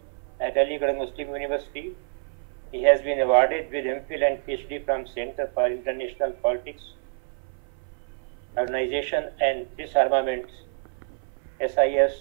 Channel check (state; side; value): silent; left; 57 dB below the other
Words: at Aligarh Muslim University. He has been awarded with MPhil and PhD from Center for International Politics, Organization and Disarmament, SIS,